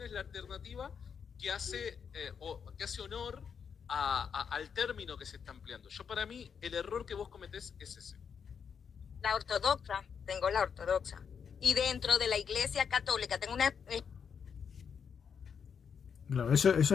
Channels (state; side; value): quieter; right; 6.9 dB